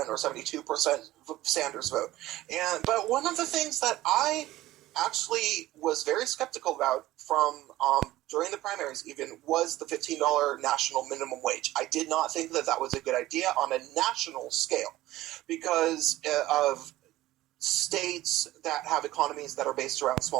72% Sanders vote. But one of the things that I actually was very skeptical about from during the primaries even was the $15 national minimum wage. I did not think that was a good idea on a national scale because of states that have economies that are based around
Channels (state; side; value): quieter; left; 16.2 dB